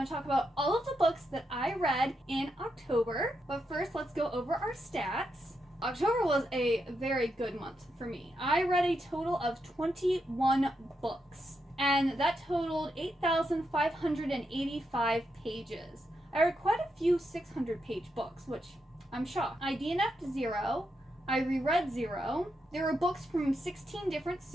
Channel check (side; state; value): both; normal; correlation 0.83